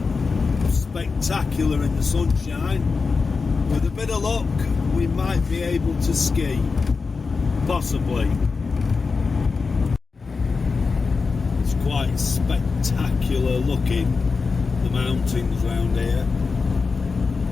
spectacular in the sunshine. With a bit of luck, we might be able to ski. Possibly. It's quite spectacular looking, the mountains round here.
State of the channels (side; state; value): right; quieter; 4.6 dB